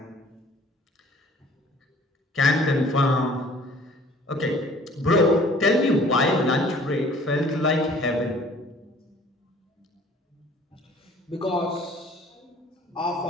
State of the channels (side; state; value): both; normal; correlation 0.52